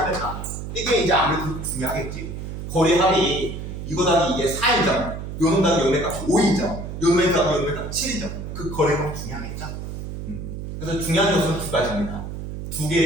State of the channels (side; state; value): right; noise; hum, 7 dB below the sound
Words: 값 이게 이제 아무래도 중요하겠지. 거리합이 이거 더하기 이게 4이죠. 요놈 더하기 요놈의 값이 5이죠. 요놈의 더하기 요놈의 값이 7이죠. 그 거리값 중요하겠죠. 그래서 중요한 요소는 두 가지입니다. 두